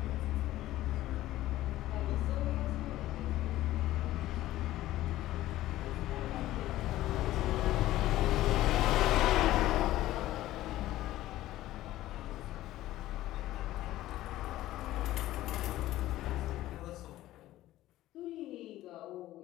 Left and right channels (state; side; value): quieter; right; 15.2 dB